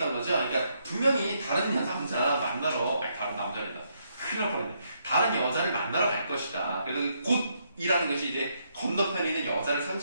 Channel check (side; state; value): both; inverted; correlation -0.76